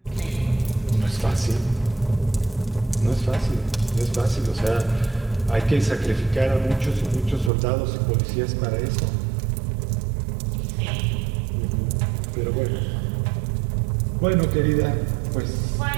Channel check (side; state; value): left; drops out; at 7.5 s